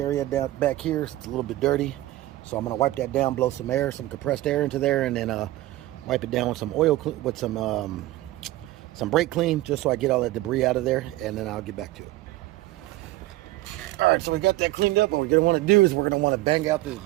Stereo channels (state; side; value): quieter; left; 17.1 dB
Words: down back here. It's a little bit dirty. So I'm going to wipe that down, blow some air, some compressed air into there, and then wipe it down with some oil, with some brake clean, just so I get all that debris out of there, and then I'll get back to it. All right, so we got that cleaned up. What we're gonna want to do is we're gonna want to bang out this